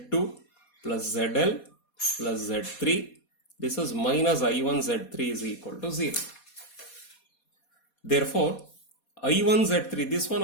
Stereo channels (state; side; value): late; right; 4.2 ms